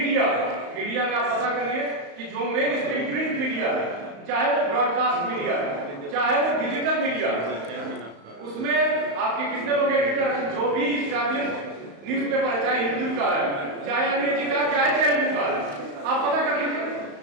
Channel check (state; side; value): late; left; 35 ms